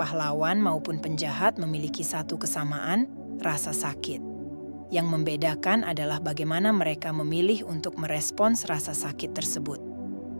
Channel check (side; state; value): both; inverted; correlation -1.00